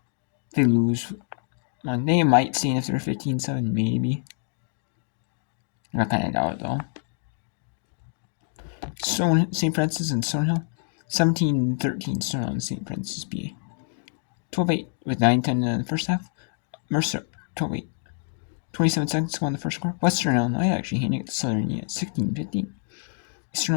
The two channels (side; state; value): right; silent; 61 dB below the other